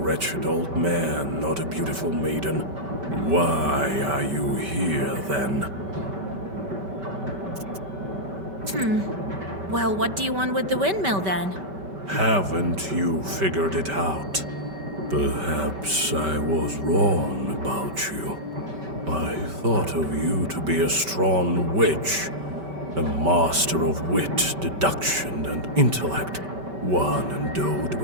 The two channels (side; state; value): left; late; 5.2 ms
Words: old man, not a beautiful maiden. Why are you here, then? Well, what do you want with the windmill, then? Haven't you figured it out? Perhaps I was wrong about you. I thought of you to be a strong witch, a master of wit, deduction, and intellect. One endowed